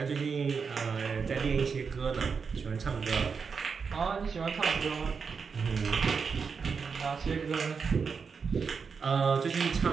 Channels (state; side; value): quieter; left; 5.6 dB